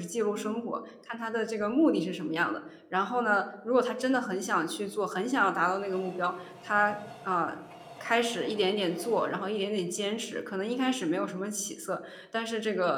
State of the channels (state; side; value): identical; both; correlation 1.00